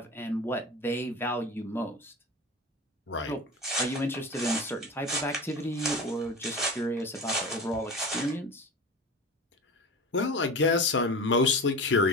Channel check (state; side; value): normal; both; correlation 0.31